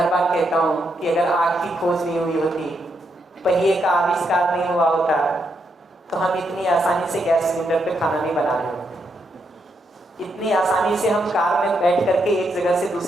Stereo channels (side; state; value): both; normal; correlation 0.79